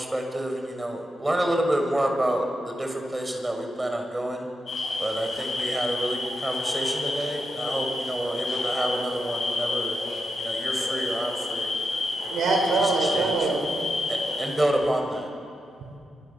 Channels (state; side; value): normal; both; correlation 0.86